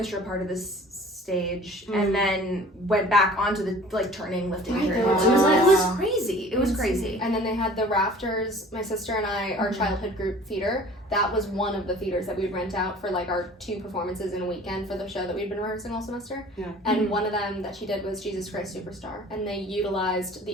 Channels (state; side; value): normal; both; correlation 0.47